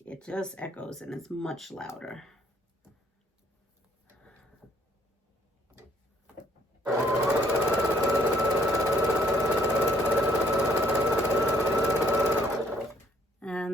it just echoes and it's much louder.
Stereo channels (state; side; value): normal; both; correlation 0.65